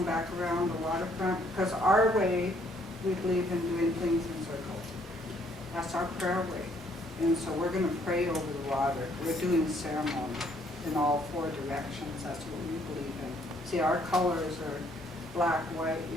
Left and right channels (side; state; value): both; normal; correlation 0.66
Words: back around the waterfront, because our way, we believe in doing things in circles. That's our prayer way. And so we're going to pray over the water. We're doing ceremony in all 4 directions. That's what we believe in. See, our colors are black, white,